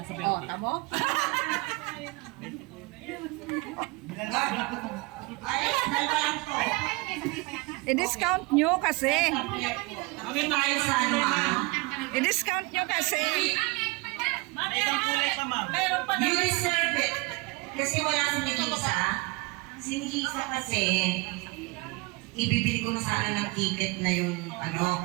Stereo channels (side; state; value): left; quieter; 25.4 dB